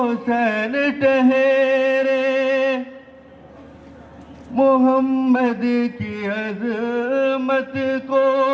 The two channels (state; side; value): identical; both; correlation 1.00